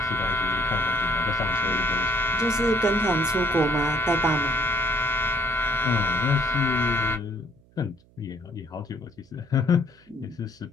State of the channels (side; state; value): right; noise; hum, 30 dB below the sound